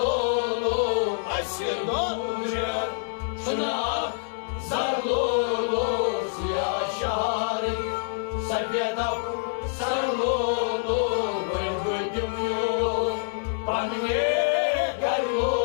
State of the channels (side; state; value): right; silent; 61 dB below the other